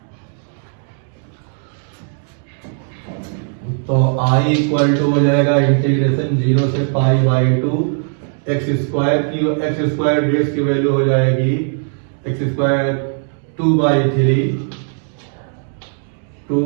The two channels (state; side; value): silent; left; 55 dB below the other